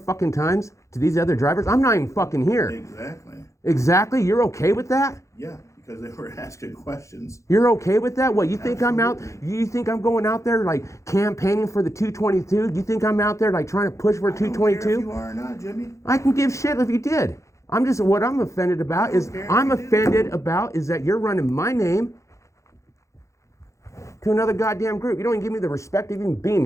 times to these other drivers. I'm not even fucking here. Exactly. Exactly? You're okay with that? Yeah, because they were asking questions. You're okay with that? What, you think I'm out, you think I'm going out there like campaigning for the 222? You think I'm out there like trying to push for I don't care 222? if you are or not, Jimmy. I can give shit if you did. What I'm offended about is that you're running my name to another goddamn group. You don't even give me the respect of even being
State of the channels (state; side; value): late; right; 0.15 ms